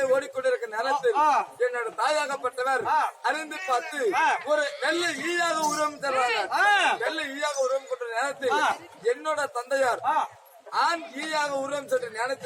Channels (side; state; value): both; identical; correlation 1.00